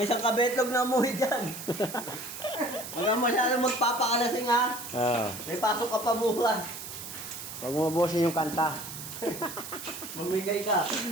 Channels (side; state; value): right; noise; hiss, 10 dB below the sound